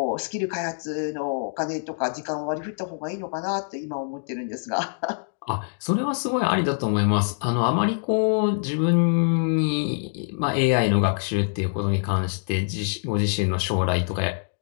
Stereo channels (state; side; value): silent; right; digital silence